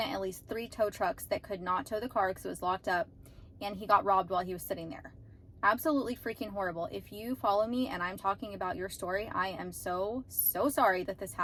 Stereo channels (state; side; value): identical; both; correlation 1.00